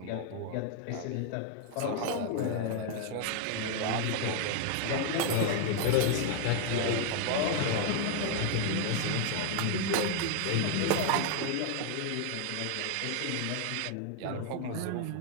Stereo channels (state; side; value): different; both; correlation 0.00